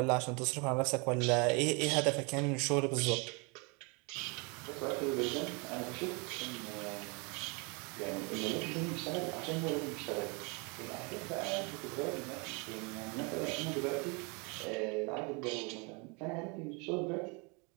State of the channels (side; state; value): left; quieter; 31.8 dB